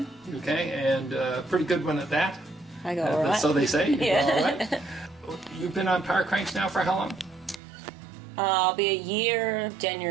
Okay, and pretty good one at that. I go all right. So they say. You Yeah. go all right. You've been on PowerCranks now for how long? I'll be a year,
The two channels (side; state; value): left; drops out; at 7.6 s